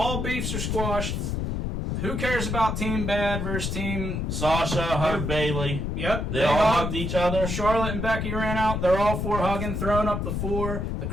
beefs are squashed. Who cares about Team Bad versus Team... Sasha hugged Bayley. Yep. They all hugged each other. Charlotte and Becky ran out. They're all four hugging, throwing up the four. The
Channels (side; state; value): left; noise; rumble, 2 dB below the sound